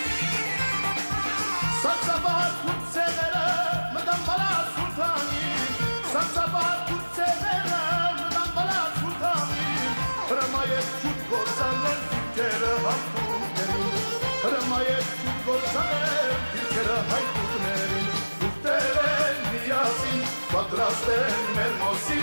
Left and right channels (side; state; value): both; inverted; correlation -1.00